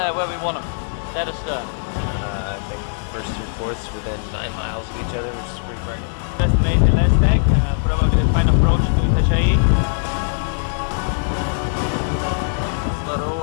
where we want them. Dead astern. I think first through fourths within 9 miles of each other, which is pretty burning. Just made the last leg, probably the final approach to B2G. It's not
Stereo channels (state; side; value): silent; right; digital silence